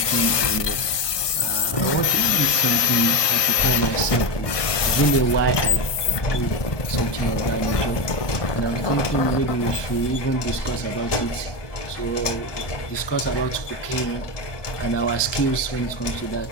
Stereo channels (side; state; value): right; late; 1.2 ms